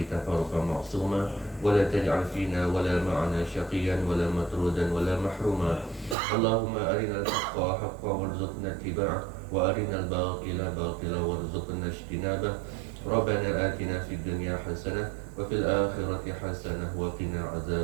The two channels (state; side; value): drops out; left; at 6.2 s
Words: تفارقا معصوما ولا تجعل فينا ولا معنا شقيا ولا مطرودا ولا محروما اللهم أرنا الحق حقا وارزقنا اتباعه وأرنا الباطل باطلا وارزقنا اجتنابه ربنا آتنا في الدنيا حسنة وفي الآخرة حسنة وقنا